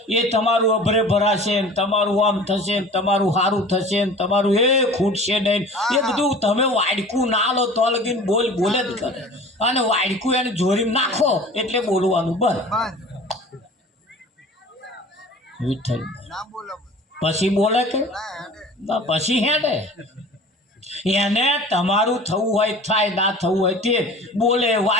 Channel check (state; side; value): normal; both; correlation 0.42